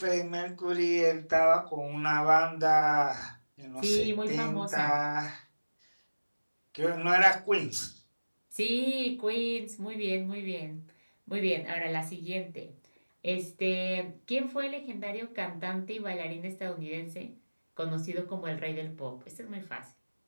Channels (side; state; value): both; inverted; correlation -1.00